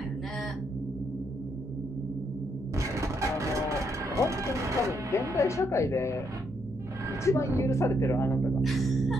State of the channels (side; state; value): both; normal; correlation 0.76